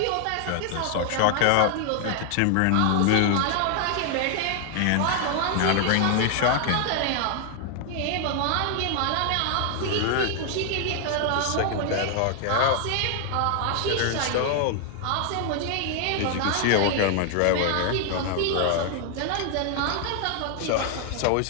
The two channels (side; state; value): both; different; correlation 0.00